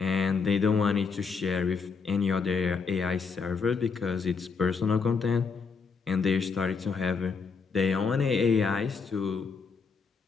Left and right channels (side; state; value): right; quieter; 5.2 dB